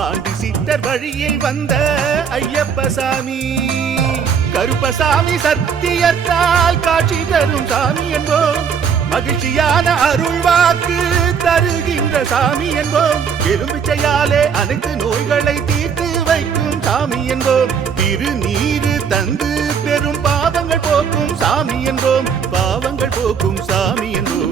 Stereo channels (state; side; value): quieter; left; 6.8 dB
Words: சித்தர் வழியில் வந்த ஐயப்பசாமி கருப்பசாமி சத்தியத்தால் காட்சி தரும் சாமி என்போம் மகிழ்ச்சியான அருள்வாக்கு தருகின்ற சாமி என்போம் எலும்பிச்சையாலே அனைத்து நோய்களை தீர்த்து வைக்கும் சாமி என்போம் திருநீரு தந்து பெரும் பாவங்கள் போக்கும் சாமி என்போம் பாவங்கள் போக்கும் சாமி